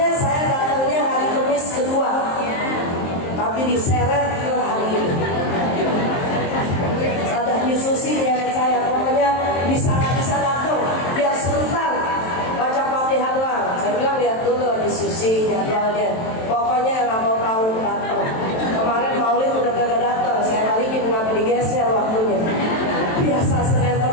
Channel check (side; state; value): right; late; 23 ms